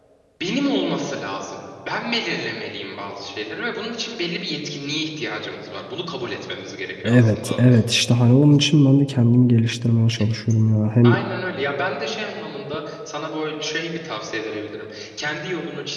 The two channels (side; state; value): both; identical; correlation 1.00